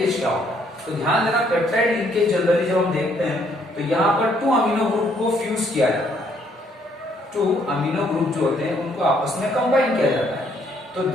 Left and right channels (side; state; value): both; normal; correlation 0.68